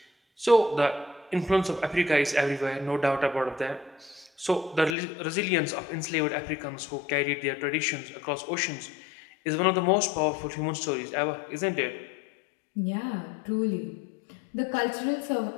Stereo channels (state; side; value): drops out; right; at 5.0 s